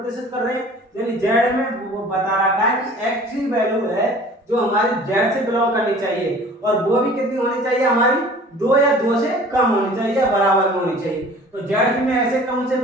कर रहे हैं? यानी जेड में वो बता रखा है कि एक्स की वैल्यू है जो हमारी जेड से बिलोंग करनी चाहिए, और वो भी कितनी होनी चाहिए? हमारी 2 या 2 से कम होनी चाहिए या बराबर में होनी चाहिए। तो जेड में ऐसे कौन से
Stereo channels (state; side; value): normal; both; correlation 0.47